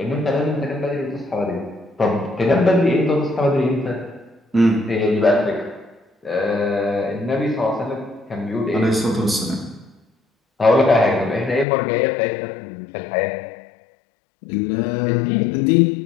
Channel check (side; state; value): right; drops out; at 11.7 s